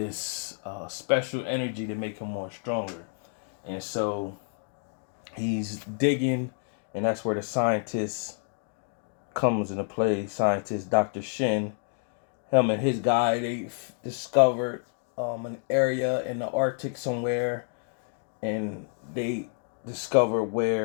special energy to make him more stronger. And so he's digging, and that's where the scientist comes into play. Scientist Dr. Shin, him and his guy, they discovered an area in the Arctic somewhere, and they discover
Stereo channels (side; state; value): right; silent; 55 dB below the other